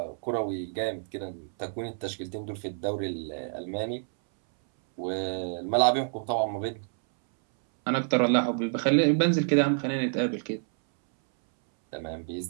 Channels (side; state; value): left; silent; 59 dB below the other